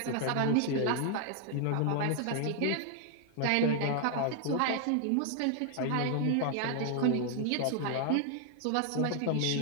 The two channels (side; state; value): both; different; correlation 0.00